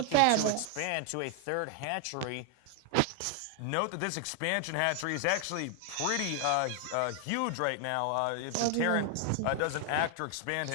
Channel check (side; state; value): both; different; correlation 0.00